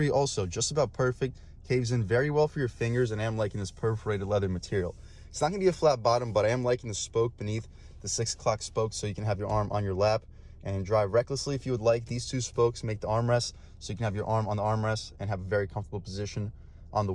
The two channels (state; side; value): identical; both; correlation 1.00